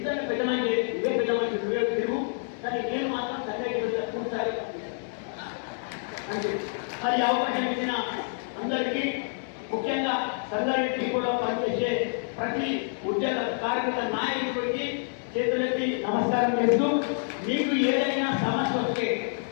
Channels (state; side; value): silent; right; digital silence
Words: పెద్దమంది ఇవే పెద్దమంది తిరుగు, కానీ నేను మాత్రం సంగారెడ్డి పూర్తి సహకరిస్తాను. అంటే మరి అవకాశం ఇచ్చిన అందరికీ, ముఖ్యంగా సంగారెడ్డి కూడా పనిచేసే ప్రతి ఉద్యోగ కార్మిక నాయకుడికి చేతులెత్తి నమస్కారం చేస్తూ, మీకు ఏదైనా సమస్య వస్తే,